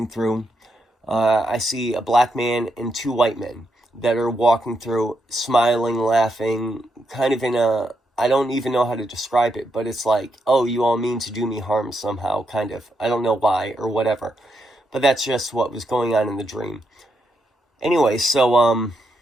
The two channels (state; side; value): normal; both; correlation 0.80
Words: through. I see a black man and two white men that are walking through, smiling, laughing, kind of in a, I don't even know how to describe it, but it's like, oh, you all mean to do me harm somehow, kind of. I don't know why or whatever. But that's just what was going on in the dream. Anyway, so,